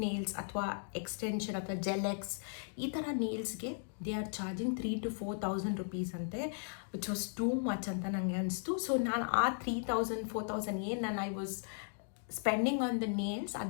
nails ಅಥವಾ ಎಕ್ಸ್ಟೆನ್ಷನ್ ಅಥವಾ ಜೆಲೆಕ್ಸ್ ಈ ಥರ ನೇಲ್ಸ್ಗೆ ದೇ ಆರ್ ಚಾರ್ಜಿಂಗ್ 3,000-4,000 rupees ಅಂತೆ, ವಿಚ್ ವಾಸ್ ಟೂ ಮಚ್ ಅಂತ ನನಗೆ ಅನಿಸ್ತು. ಸೊ ನಾನು ಆ 3,000-4,000 ಏನು ನಾನು I was spending on the nails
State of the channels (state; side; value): silent; right; digital silence